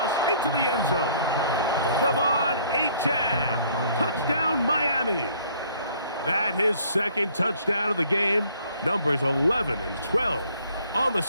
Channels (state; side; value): inverted; both; correlation -0.59